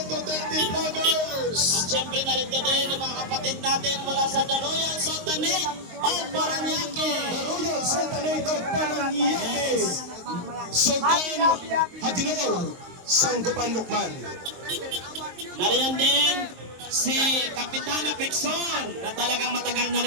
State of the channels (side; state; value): left; late; 23 ms